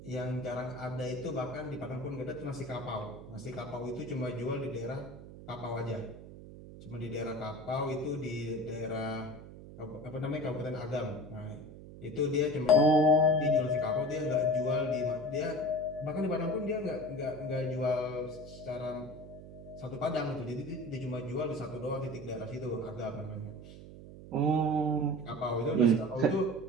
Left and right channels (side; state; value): right; noise; hum, 15 dB below the sound